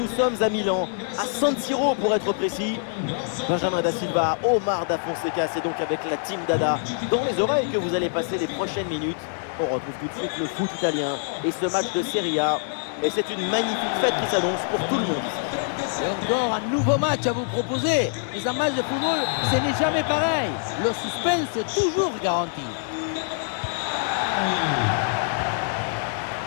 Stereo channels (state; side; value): silent; right; digital silence